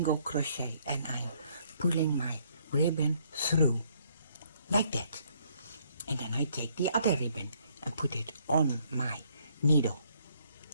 crochet, and I'm pulling my ribbon through like that. And then I take the other ribbon and put it on my needle,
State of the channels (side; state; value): both; inverted; correlation -0.67